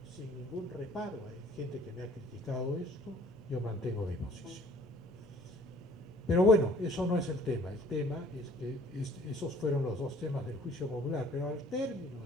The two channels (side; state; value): both; normal; correlation 0.54